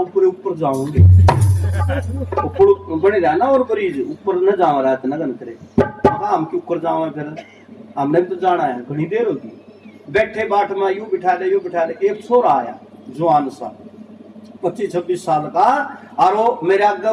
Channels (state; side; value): identical; both; correlation 1.00